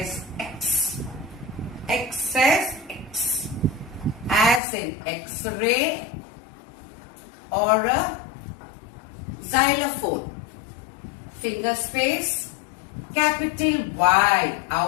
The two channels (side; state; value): right; drops out; at 4.6 s